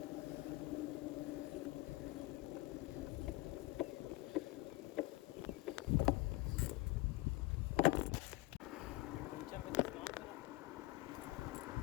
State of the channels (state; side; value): quieter; right; 19.7 dB